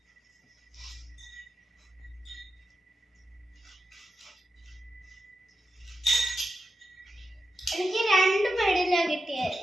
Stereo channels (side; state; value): both; normal; correlation 0.89